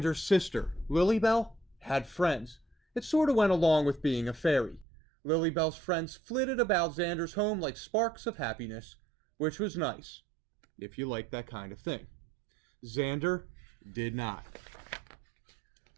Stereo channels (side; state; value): left; drops out; at 4.9 s